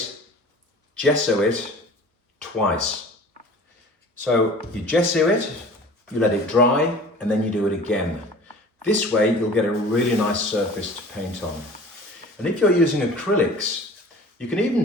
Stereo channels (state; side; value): normal; both; correlation 0.43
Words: gesso it twice. So you gesso it, you let it dry, and then you do it again. This way you'll get a really nice surface to paint on. And if you're using acrylics, you can